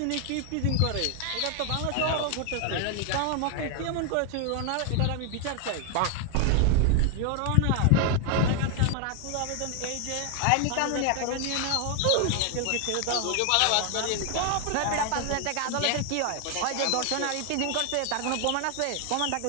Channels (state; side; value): different; both; correlation 0.00